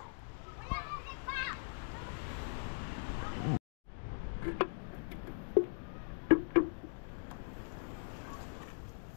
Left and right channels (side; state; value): right; silent; digital silence